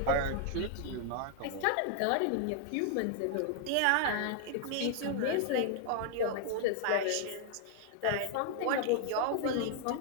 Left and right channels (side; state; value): both; different; correlation 0.00